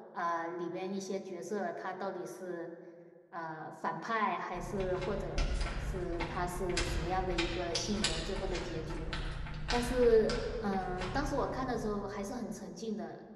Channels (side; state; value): both; identical; correlation 1.00